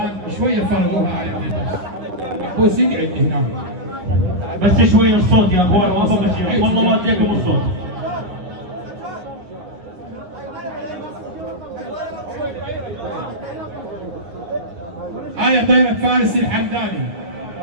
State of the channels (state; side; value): late; left; 10 ms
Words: شويه فرضوها على الناس. محبوس يقعد هنا. بس شوي الصوت يا اخوان، ما فوق شيء والله ما اديكم الصوت. هاي طيرة فارس الحمداني